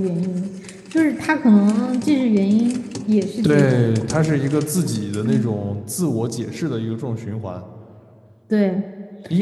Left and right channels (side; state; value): both; identical; correlation 1.00